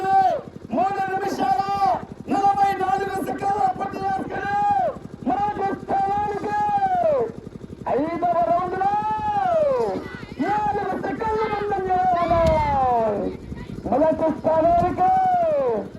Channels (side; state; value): both; identical; correlation 1.00